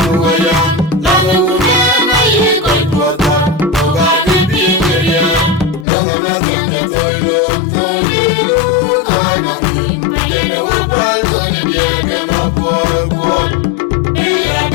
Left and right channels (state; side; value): drops out; right; at 5.9 s